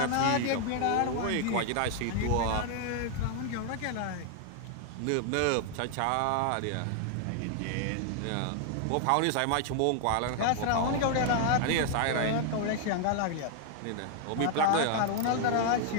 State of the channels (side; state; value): both; different; correlation 0.00